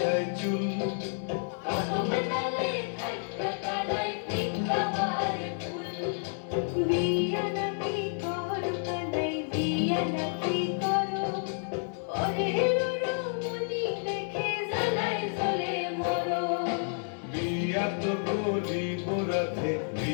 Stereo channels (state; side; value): silent; right; 58 dB below the other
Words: চুল, বিয়া নাকি করো কানাই বিয়া নাকি করো, পরের রমণী দেখে জ্বালায় জ্বলে মরো। বিয়া তো করিব রাধে